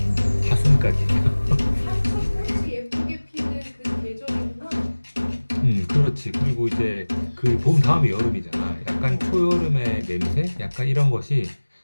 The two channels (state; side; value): inverted; both; correlation -1.00